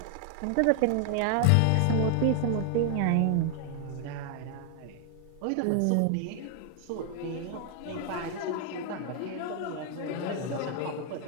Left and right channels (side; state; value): both; different; correlation 0.00